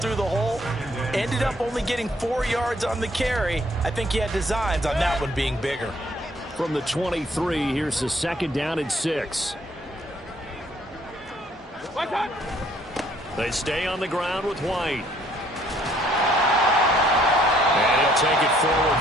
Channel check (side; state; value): both; normal; correlation 0.63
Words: the hole. Ended up only getting 4 yards on the carry. I think he had designs on that one being bigger. From the 23, here's the second down and 6. They stay on the ground with White. And he'll take it forward